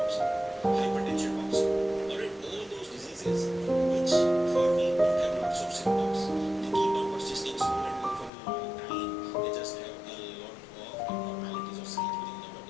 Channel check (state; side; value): drops out; right; at 8.3 s